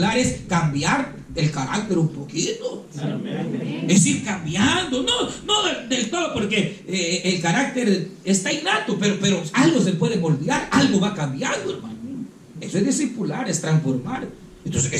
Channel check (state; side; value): identical; both; correlation 1.00